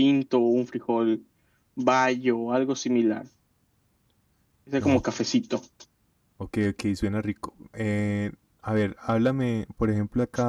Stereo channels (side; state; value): both; identical; correlation 1.00